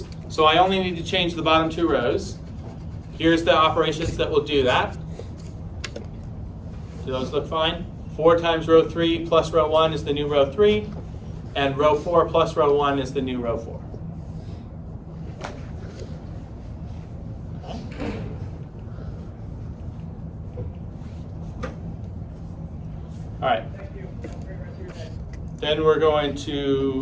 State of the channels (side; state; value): both; identical; correlation 1.00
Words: So I only need to change the bottom 2 rows. Here's the operations that will do that. Do those look fine? 4 times row 3 plus row 1 is the new row 3, and row 4 plus row 1 is the new row 4. Okay. All right. Then we're going